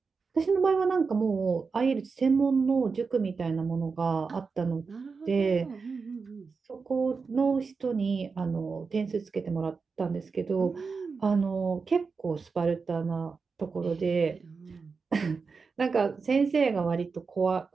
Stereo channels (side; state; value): left; quieter; 4.9 dB